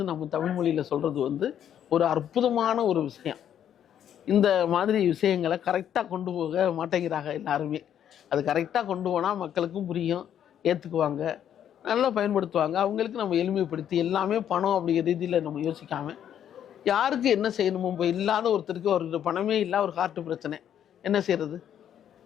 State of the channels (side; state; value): right; quieter; 9.8 dB